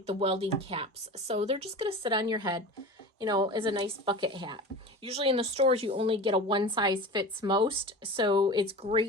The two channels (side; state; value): both; normal; correlation 0.33